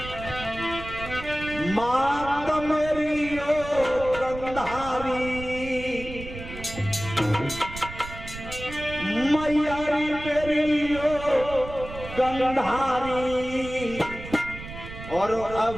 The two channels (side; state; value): right; noise; rumble, 12 dB below the sound